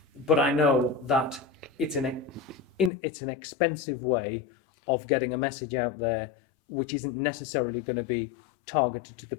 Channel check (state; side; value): drops out; right; at 2.9 s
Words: but I know that it's an expensive way of getting a message out there, which isn't necessarily going to be targeted to the